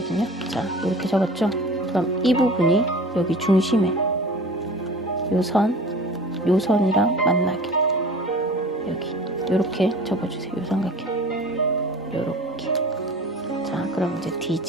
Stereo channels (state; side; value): normal; both; correlation 0.41